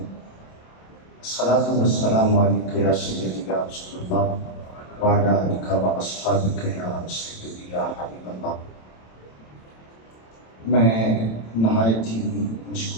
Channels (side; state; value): right; late; 27 ms